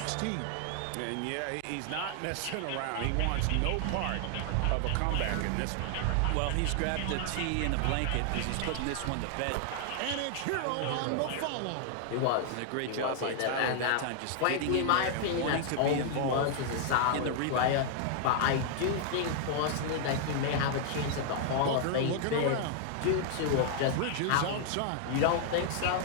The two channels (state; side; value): different; both; correlation 0.00